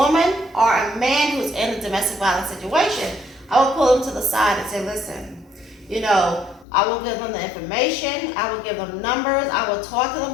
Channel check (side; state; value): right; drops out; at 6.7 s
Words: or a man who's in a domestic violence situation, I would pull them to the side and say, listen, I will give them the information. I will give them numbers. I will talk to them.